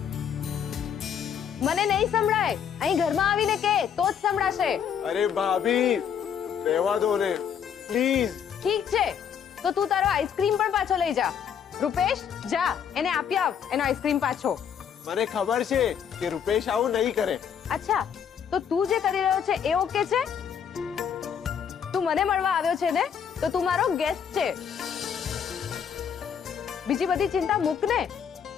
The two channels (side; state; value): right; quieter; 7.9 dB